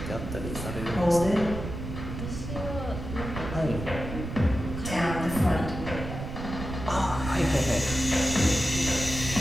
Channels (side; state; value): right; noise; rumble, 7 dB below the sound